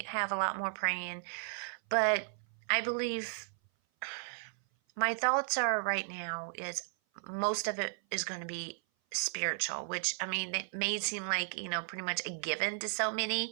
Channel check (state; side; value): silent; left; 55 dB below the other